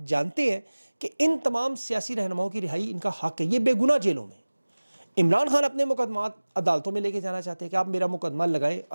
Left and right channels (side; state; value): both; inverted; correlation -1.00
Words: جانتے ہیں کہ ان تمام سیاسی رہنماؤں کی رہائی ان کا حق ہے، یہ بے گناہ جیلوں میں۔ عمران خان اپنے مقدمات عدالتوں میں لے کے جانا چاہتے ہیں کہ آپ میرا مقدمہ لگائیں،